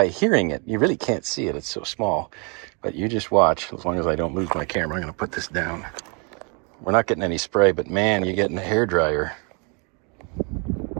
hearing it, you really can't see it, it's so small, but you just watch. As long as I don't lose my camera, I'm gonna put this down. We're not getting any spray, but man, you're getting a hairdryer.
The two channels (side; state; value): left; quieter; 34.1 dB